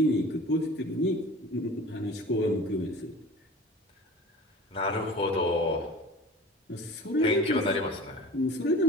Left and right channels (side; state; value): both; normal; correlation 0.40